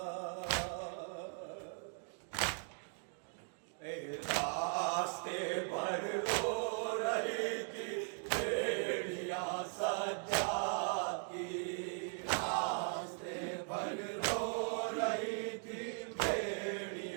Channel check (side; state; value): left; silent; 52 dB below the other